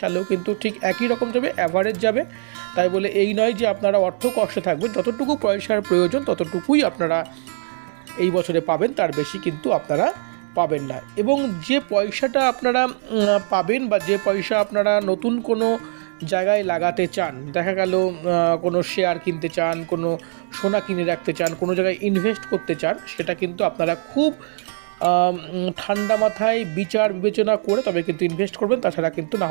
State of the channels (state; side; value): silent; left; 65 dB below the other